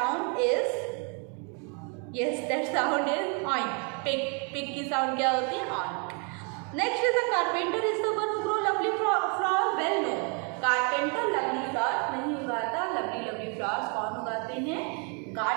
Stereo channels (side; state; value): left; quieter; 36.9 dB